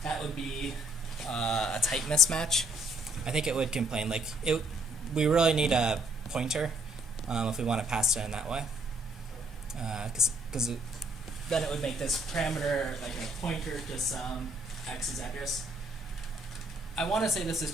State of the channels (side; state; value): both; normal; correlation 0.67